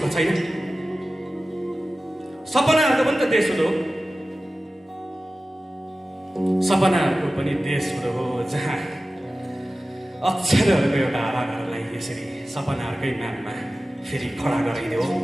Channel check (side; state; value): both; normal; correlation 0.95